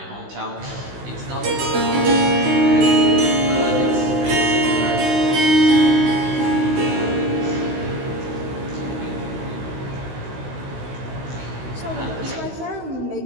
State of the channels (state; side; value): late; left; 16 ms